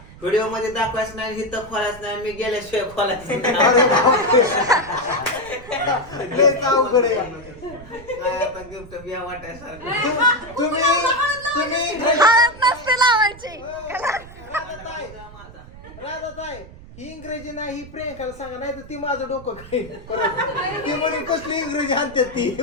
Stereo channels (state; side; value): noise; right; rumble, 18 dB below the sound